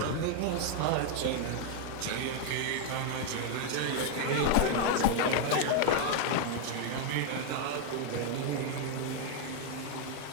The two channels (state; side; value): different; both; correlation 0.00